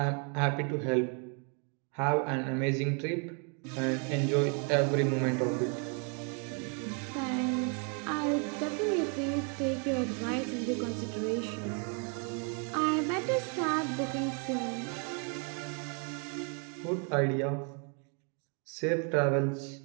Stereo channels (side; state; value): left; quieter; 38.4 dB